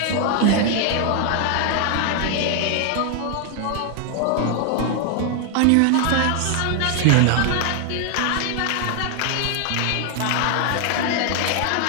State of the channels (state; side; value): different; both; correlation 0.00